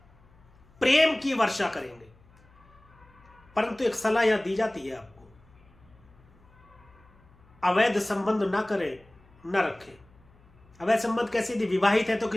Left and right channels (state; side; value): noise; left; hum, 28 dB below the sound